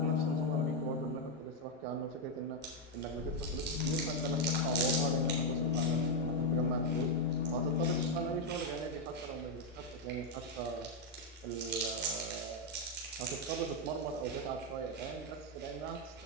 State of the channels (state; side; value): normal; both; correlation 0.02